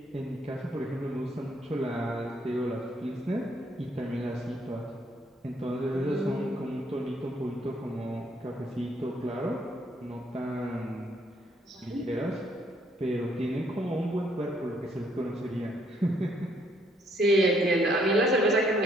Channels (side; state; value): both; normal; correlation 0.69